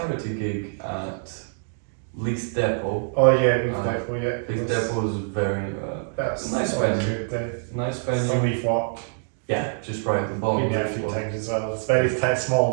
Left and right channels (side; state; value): left; silent; digital silence